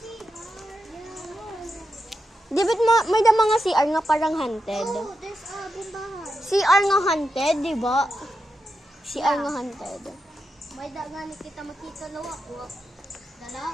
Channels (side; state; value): both; normal; correlation 0.87